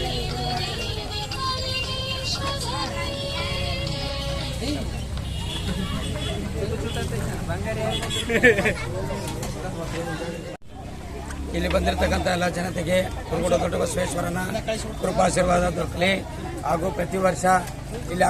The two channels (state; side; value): identical; both; correlation 1.00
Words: ಇಲ್ಲಿ ಬಂದಿರತಕ್ಕಂಥ ಎಲ್ಲ ಜನತೆಗೆ ಕುರುಗೋಡು ದೊಡ್ಡ ಬಸವೇಶ್ವರನ ಕೃಪಾಶೀರ್ವಾದ ದೊರಕಲಿ ಹಾಗೂ ಪ್ರತಿ ವರ್ಷ ಇಲ್ಲಿ